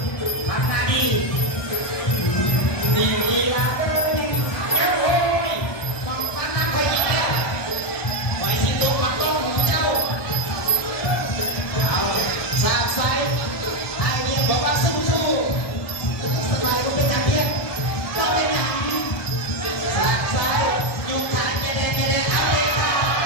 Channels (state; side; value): late; right; 1.2 ms